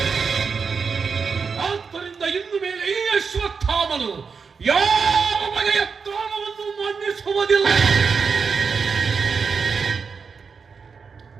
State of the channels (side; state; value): left; quieter; 5.5 dB